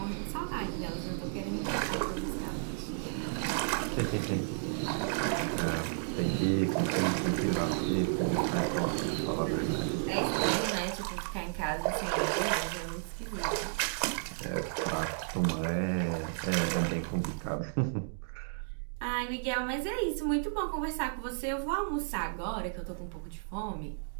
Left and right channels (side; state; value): left; silent; digital silence